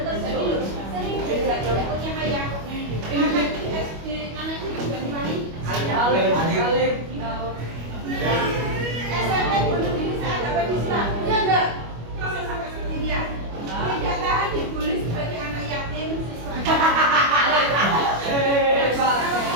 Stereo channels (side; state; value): left; late; 25 ms